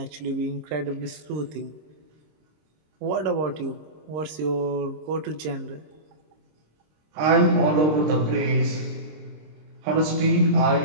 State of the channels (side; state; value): left; late; 26 ms